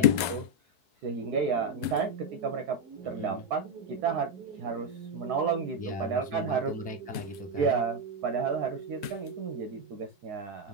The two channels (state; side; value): late; left; 4.6 ms